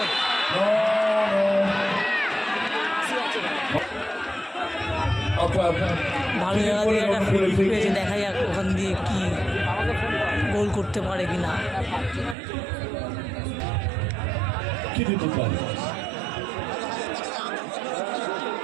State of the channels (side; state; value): left; drops out; at 12.4 s